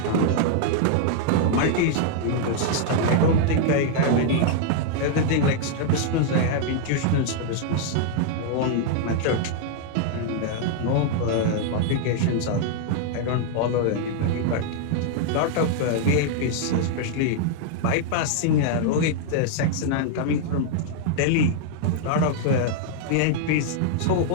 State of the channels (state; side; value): different; both; correlation -0.01